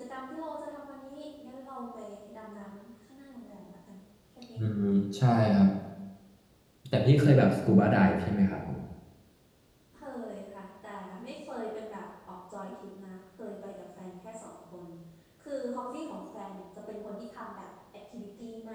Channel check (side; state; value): both; identical; correlation 1.00